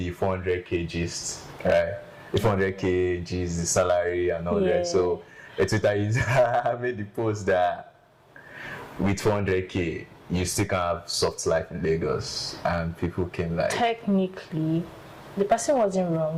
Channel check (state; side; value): identical; both; correlation 1.00